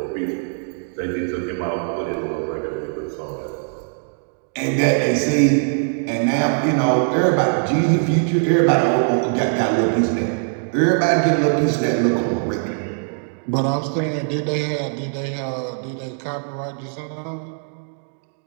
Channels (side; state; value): left; silent; 64 dB below the other